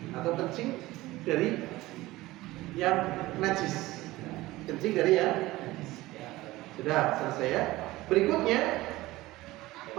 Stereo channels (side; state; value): left; quieter; 18.3 dB